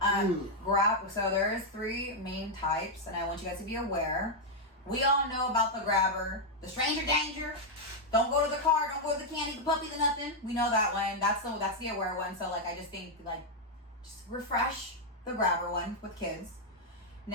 So there's three main types, and I want you guys to be aware. We all know about the grabber, the stranger danger. Don't go to the car, don't go to the candy, the puppy, the nothing. We know that one. That's the aware one. So like I just think like just refresh the grabber one with kids.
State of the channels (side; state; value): both; normal; correlation -0.01